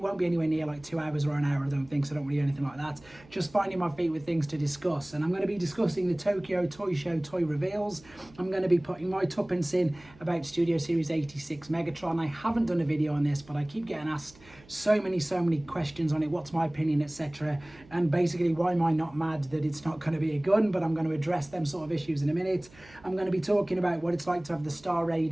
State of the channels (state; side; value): noise; right; hum, 25 dB below the sound